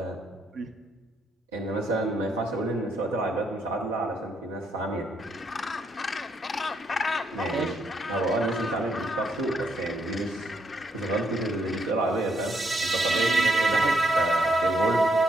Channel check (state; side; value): normal; both; correlation 0.75